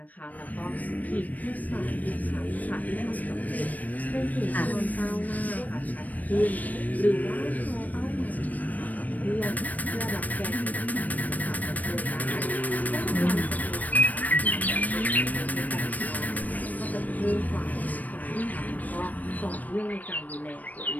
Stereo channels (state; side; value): late; right; 0.077 ms